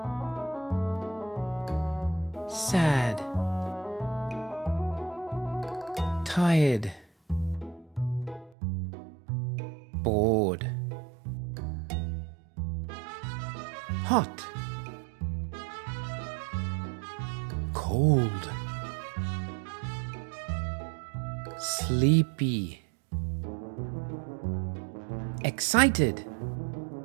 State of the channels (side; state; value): left; drops out; at 8.5 s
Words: sad, tired, bored, hot, cold, sleepy, excited,